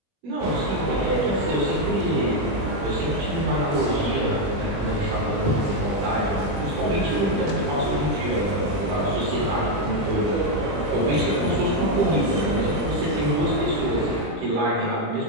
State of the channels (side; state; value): left; late; 20 ms